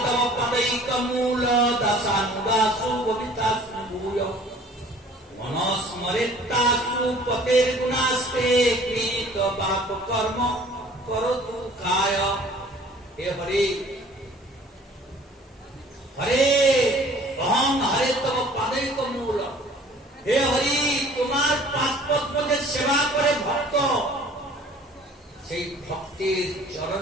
তব পদৈকমূল দাসানুদাসু ববিতাসু ভূয় মনস্মরিতাসু পতের গুণাস্তে কৃত পাপ কর্ম করতু কায়। হে হরি হরে অহং হরে তব পদৈকমূল। হে হরি, তোমার পাদপদ্মকে সেবা করে ভক্ত, সেই ভক্তির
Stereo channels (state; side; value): normal; both; correlation 0.51